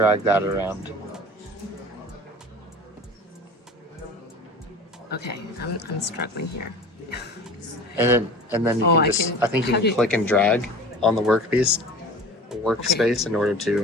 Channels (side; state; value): both; normal; correlation 0.38